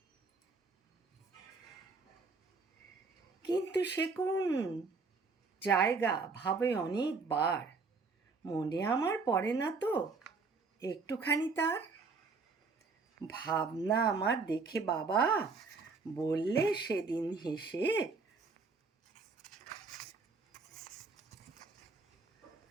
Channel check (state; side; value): quieter; left; 4.4 dB